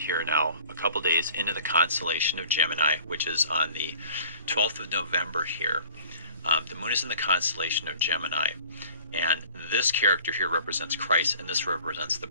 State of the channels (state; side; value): inverted; both; correlation -0.48